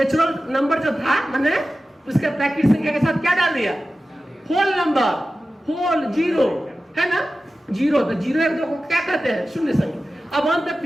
नंबर जो था मैंने उसके प्राकृतिक संख्या के साथ क्या डाल दिया? होल नंबर, होल 0 है ना। 0 तो 0 1 2 को क्या कहते हैं? शून्य संख्या। अब अंत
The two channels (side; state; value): both; normal; correlation 0.95